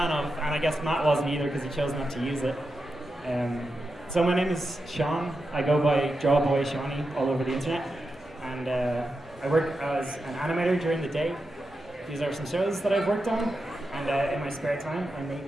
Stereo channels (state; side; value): normal; both; correlation 0.89